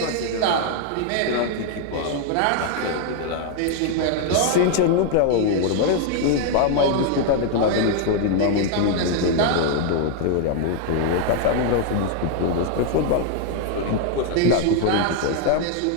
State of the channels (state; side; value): different; both; correlation 0.00